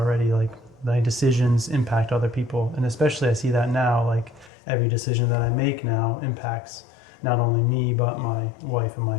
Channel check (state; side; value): drops out; right; at 4.5 s